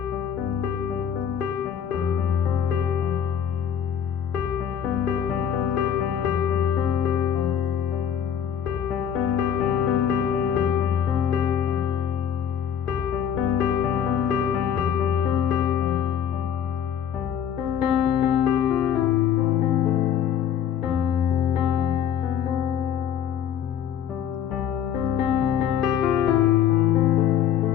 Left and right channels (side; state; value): right; quieter; 8.8 dB